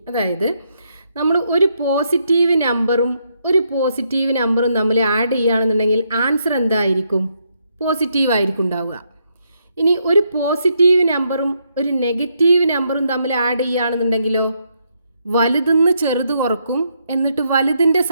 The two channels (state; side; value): inverted; both; correlation -0.77